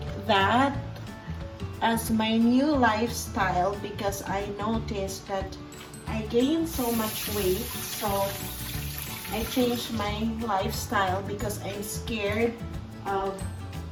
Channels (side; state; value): both; identical; correlation 1.00